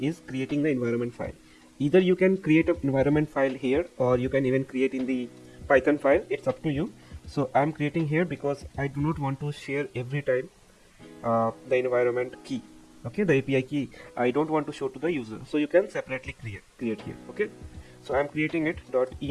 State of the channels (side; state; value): both; identical; correlation 1.00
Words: creating the environment file. Either you can create an environment file here or you can even create in the Python file. It's up to you. So I'm creating here because I do not want to share every time the environment key. Okay, the API key I don't want to show to the user. So you can separately create here. Okay, so I'm creating it